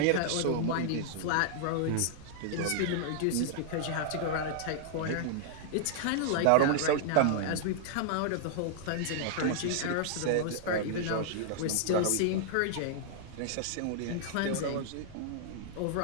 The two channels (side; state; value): both; different; correlation -0.01